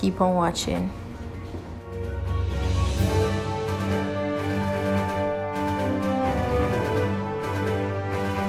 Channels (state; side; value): identical; both; correlation 1.00